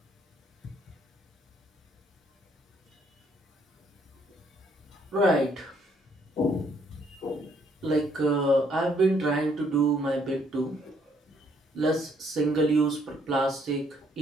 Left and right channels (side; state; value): both; normal; correlation 0.68